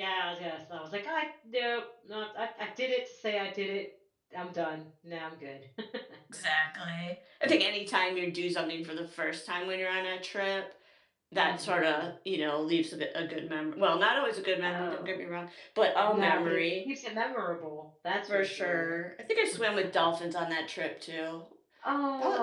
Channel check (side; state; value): both; identical; correlation 1.00